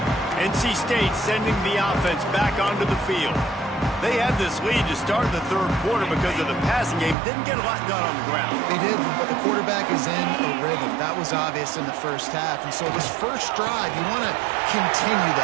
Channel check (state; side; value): drops out; left; at 7.2 s